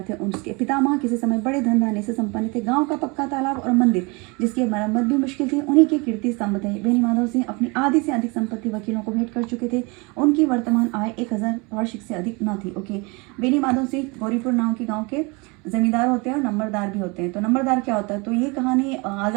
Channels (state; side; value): quieter; left; 28.3 dB